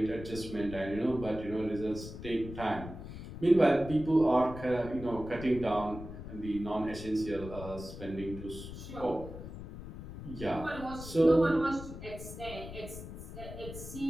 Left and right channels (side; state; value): left; noise; rumble, 11 dB below the sound